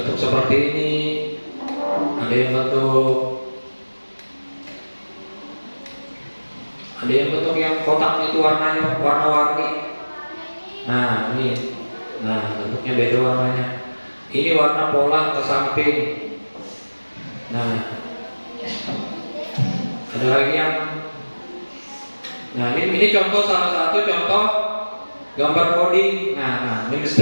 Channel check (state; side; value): inverted; both; correlation -1.00